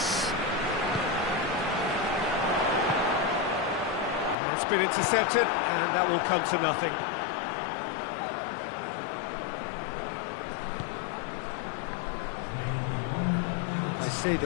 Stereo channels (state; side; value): drops out; right; at 4.4 s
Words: That's been intercepted, and that will come to nothing.